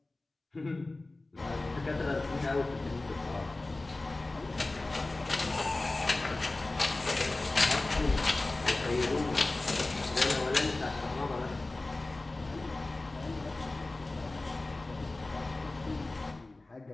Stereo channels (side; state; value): right; quieter; 3.0 dB